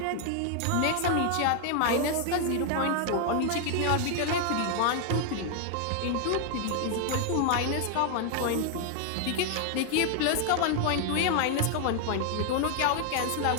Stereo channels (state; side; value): different; both; correlation 0.00